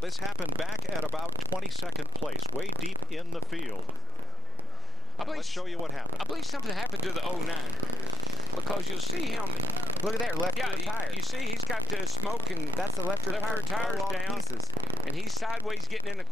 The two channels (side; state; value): both; normal; correlation 0.10